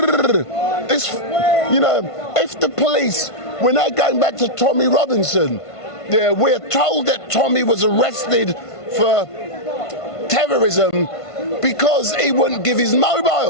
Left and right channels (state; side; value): late; right; 1.5 ms